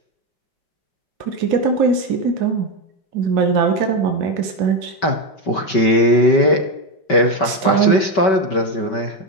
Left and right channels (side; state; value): right; late; 5.2 ms